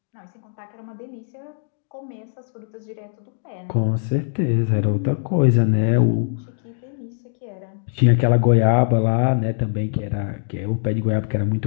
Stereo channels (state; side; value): silent; right; digital silence